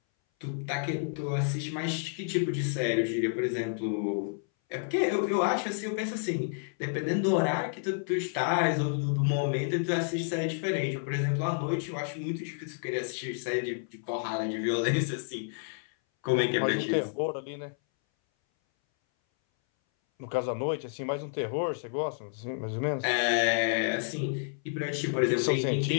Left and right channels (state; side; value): silent; right; 58 dB below the other